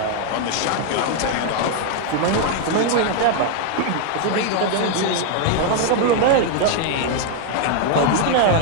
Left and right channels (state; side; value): different; both; correlation 0.00